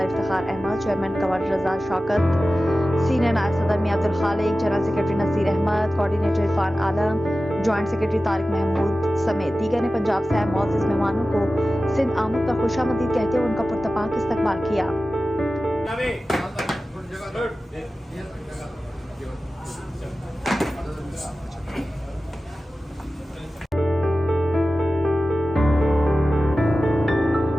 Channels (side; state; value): both; normal; correlation 0.95